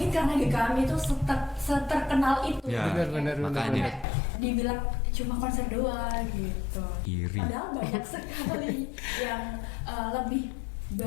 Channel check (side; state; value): right; drops out; at 4.0 s